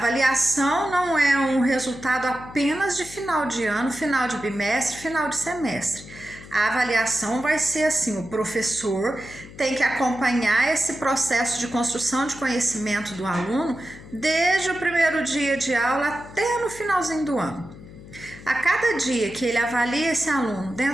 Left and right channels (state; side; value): noise; left; hum, 17 dB below the sound